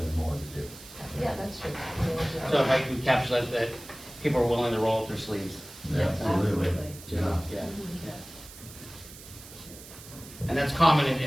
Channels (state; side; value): noise; right; hiss, 17 dB below the sound